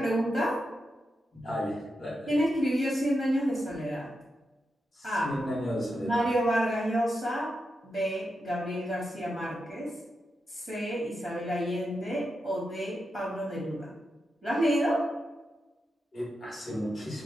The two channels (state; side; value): normal; both; correlation 0.87